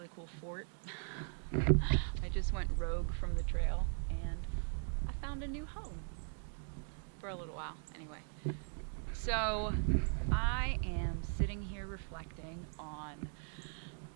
cool fort. I just went rogue from the trail and I found a new home for a little while anyway. So I am sitting here reflecting on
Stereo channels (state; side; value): silent; left; 52 dB below the other